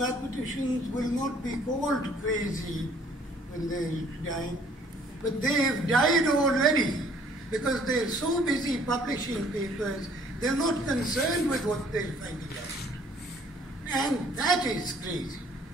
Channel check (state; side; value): normal; both; correlation 0.59